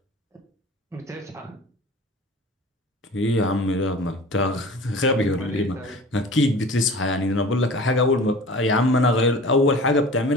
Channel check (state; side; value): normal; both; correlation 0.40